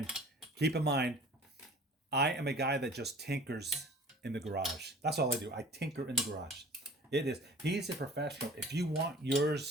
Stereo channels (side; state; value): both; normal; correlation 0.45